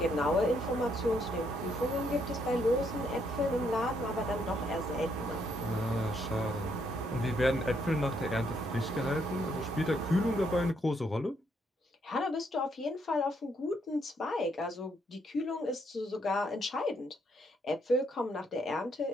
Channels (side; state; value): both; normal; correlation 0.73